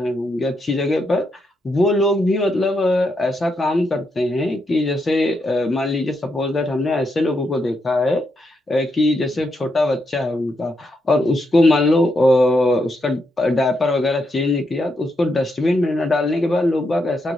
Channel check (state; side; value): normal; both; correlation 0.81